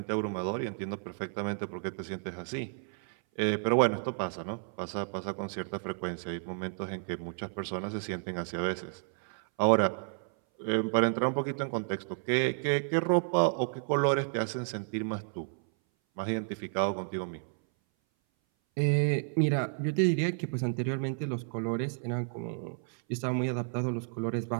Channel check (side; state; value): left; silent; 57 dB below the other